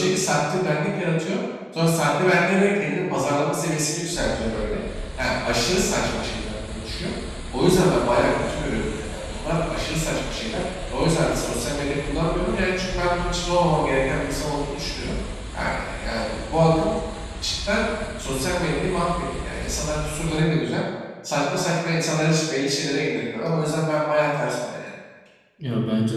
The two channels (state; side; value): identical; both; correlation 1.00